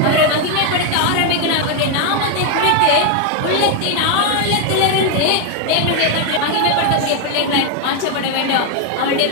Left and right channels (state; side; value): different; both; correlation 0.01